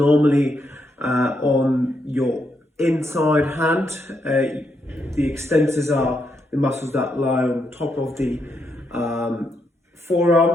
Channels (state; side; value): normal; both; correlation 0.79